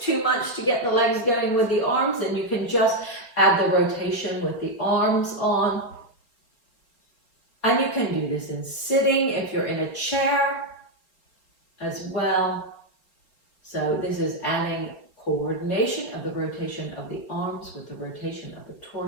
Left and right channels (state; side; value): late; right; 4.2 ms